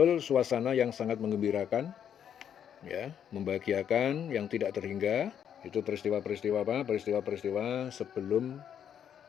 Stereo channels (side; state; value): right; quieter; 8.9 dB